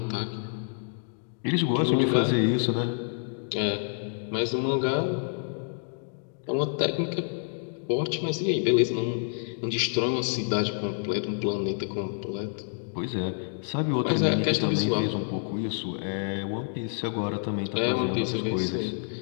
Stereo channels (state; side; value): silent; right; 59 dB below the other